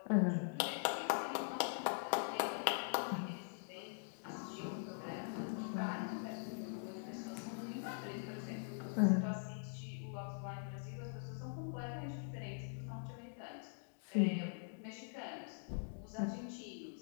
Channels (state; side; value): silent; right; digital silence